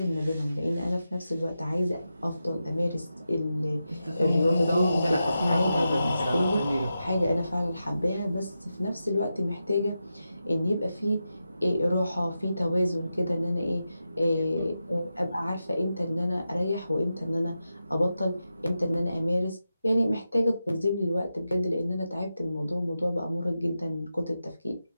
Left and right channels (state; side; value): inverted; both; correlation -0.90